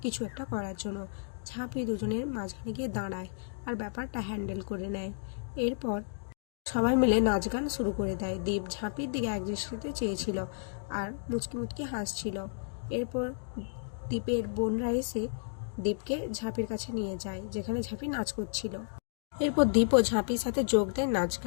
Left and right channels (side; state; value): right; silent; digital silence